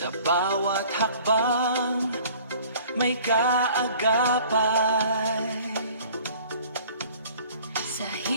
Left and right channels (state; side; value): inverted; both; correlation -0.50